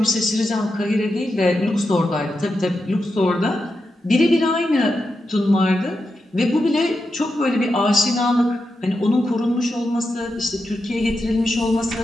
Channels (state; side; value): normal; both; correlation 0.88